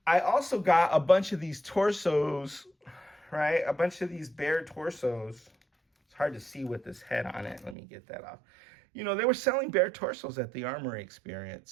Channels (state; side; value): drops out; left; at 7.8 s